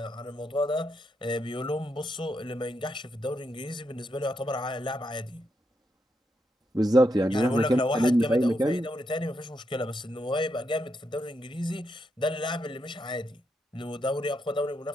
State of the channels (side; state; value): both; normal; correlation 0.82